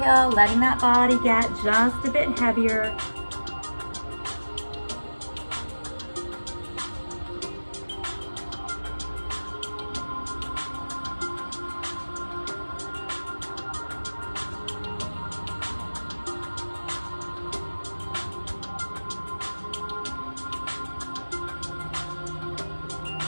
letting that body get just a bit heavier.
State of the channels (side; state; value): both; inverted; correlation -1.00